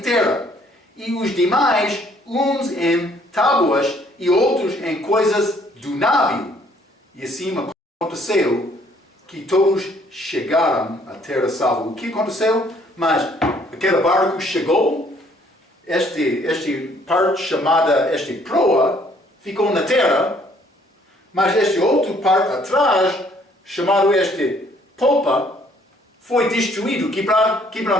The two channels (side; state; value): both; normal; correlation 0.63